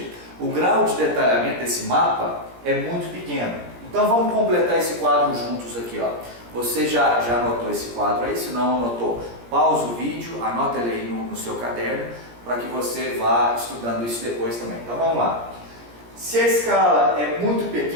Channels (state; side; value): late; left; 17 ms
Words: o grau de detalhamento desse mapa é muito pequeno. Então vamos completar esse quadro juntos aqui, ó. Você já anotou esse quadro aí? Se não anotou, pausa o vídeo, anota ele aí no seu caderno, para que você vá estudando isso depois também. Então vamos lá. Se a escala é muito